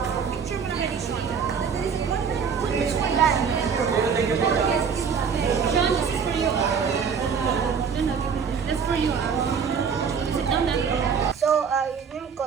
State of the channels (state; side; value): quieter; left; 6.4 dB